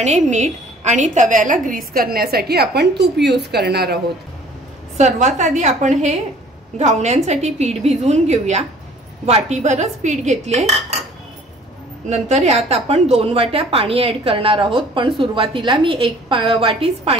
मीठ आणि तव्याला ग्रीस करण्यासाठी आपण तूप यूज करणार आहोत। सर्वात आधी आपण हे घावण्यांसाठी पीठ भिजवून घेऊया। वाटीभरच पीठ घेतले, नंतर यात आपण 2 वाट्या पाणी ऍड करणार आहोत, पण सुरुवातीला मी 1 वाटीच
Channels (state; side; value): normal; both; correlation 0.53